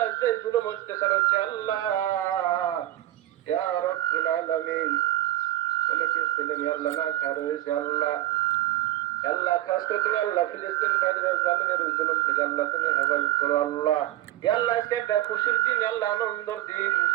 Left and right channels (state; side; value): quieter; left; 14.4 dB